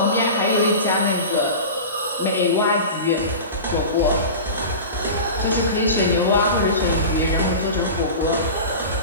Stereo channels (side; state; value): both; inverted; correlation -0.31